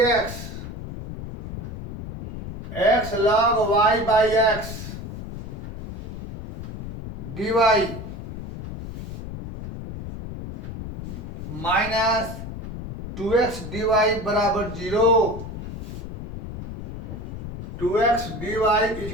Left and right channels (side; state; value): left; noise; rumble, 9 dB below the sound